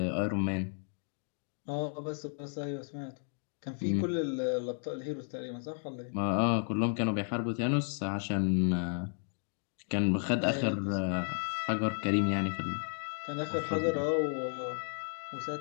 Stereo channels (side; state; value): right; silent; 55 dB below the other